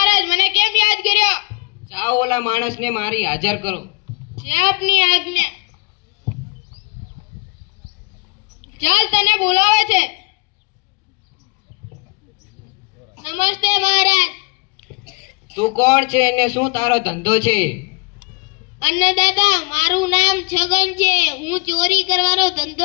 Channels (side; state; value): right; quieter; 29.0 dB